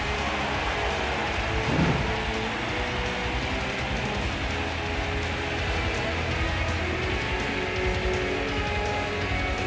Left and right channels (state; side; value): identical; both; correlation 1.00